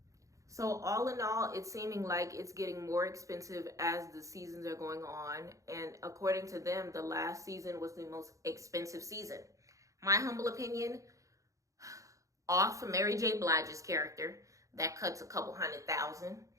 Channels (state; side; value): late; left; 0.16 ms